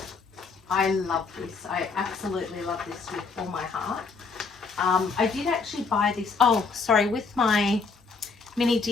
I love this. I absolutely love this with all my heart. I did actually buy this, oh, sorry, with my mini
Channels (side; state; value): right; quieter; 4.6 dB